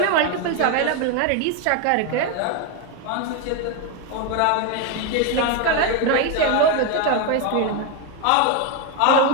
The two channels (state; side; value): different; both; correlation 0.02